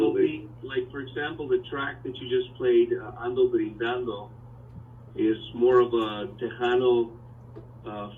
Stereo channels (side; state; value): both; identical; correlation 1.00